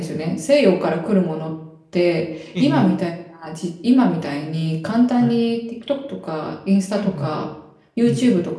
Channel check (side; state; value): both; identical; correlation 1.00